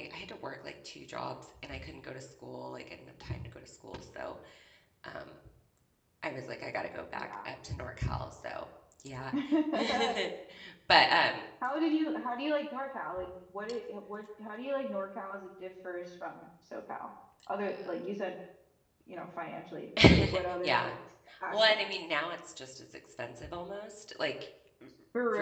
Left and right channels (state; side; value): identical; both; correlation 1.00